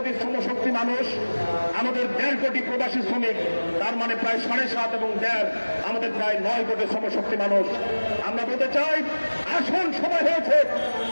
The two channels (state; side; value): inverted; both; correlation -1.00